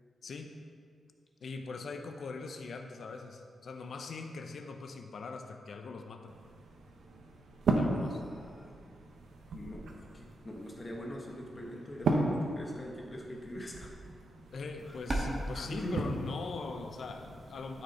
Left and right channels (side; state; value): both; normal; correlation 0.81